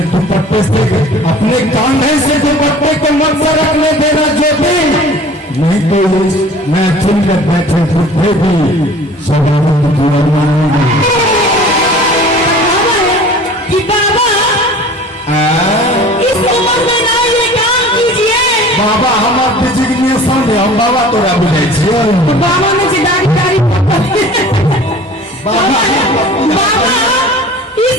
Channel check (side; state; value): both; normal; correlation 0.44